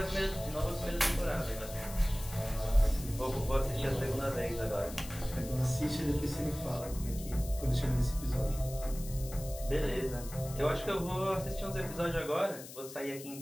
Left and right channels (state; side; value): noise; left; hiss, 14 dB below the sound